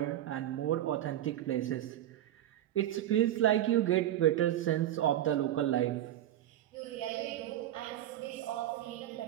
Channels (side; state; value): left; quieter; 12.6 dB